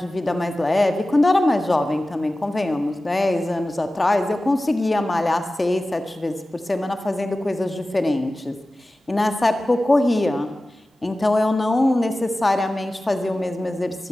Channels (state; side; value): normal; both; correlation 0.96